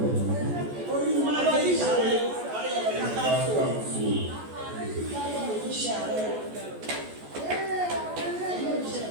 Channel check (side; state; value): left; late; 14 ms